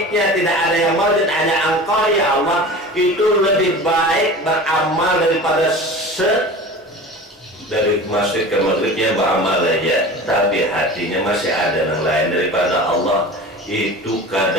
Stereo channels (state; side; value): normal; both; correlation 0.36